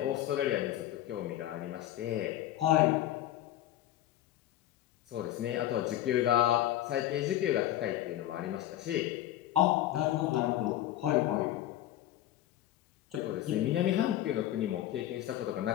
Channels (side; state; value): right; quieter; 13.3 dB